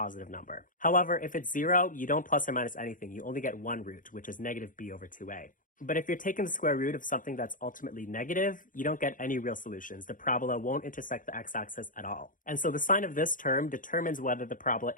number. However, if it's 0, you don't plus or minus anything. You only get one root, which is negative b over 2a. But if you're taking the square root of something that's ultimately negative, you don't get any real solutions. The parabola won't intersect the x-axis at all. And so the sign of this term determines whether the parabola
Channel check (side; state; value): right; late; 0.39 ms